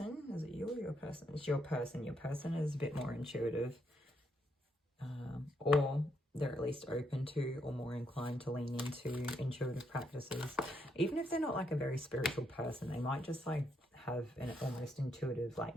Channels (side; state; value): both; normal; correlation 0.76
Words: is it you or your person? It's your person. Your person is a bit more intuitive, or they're at least open to or more inclined to lean into intuitive practices. Even if they're not like a very spiritual person, they might just like have an almost intuitive